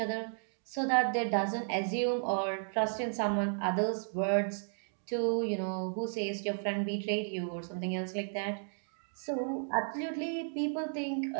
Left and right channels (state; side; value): silent; left; digital silence